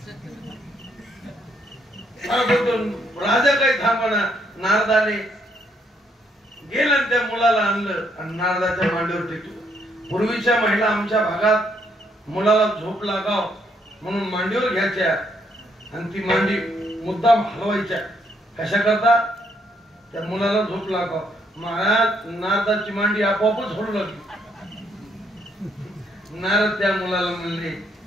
राजा काही थांबना. नारदाने गेलं त्या मुलाला आणलं आणि नारदाच्या मांडीवर टेकलं. पूर्वीच्या महिला आमच्या भागात मुलाला झोप लागाव म्हणून मांडीवर घ्यायच्या आणि ती मांडी मुद्दाम हलवायच्या. कशा करता त्या मुलाला झोप लागाव. महाराज नारदाची मांडी आपोआपच हलू लागली. नारद त्या मुलाला म्हणले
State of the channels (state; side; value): normal; both; correlation 0.72